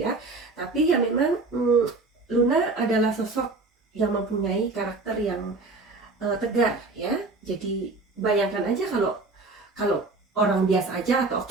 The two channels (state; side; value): quieter; left; 3.5 dB